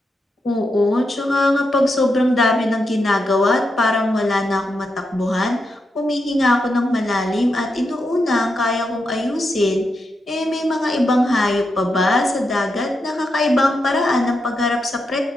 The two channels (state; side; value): normal; both; correlation 0.85